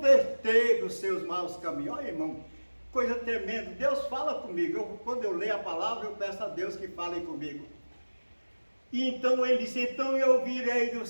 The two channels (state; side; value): inverted; both; correlation -1.00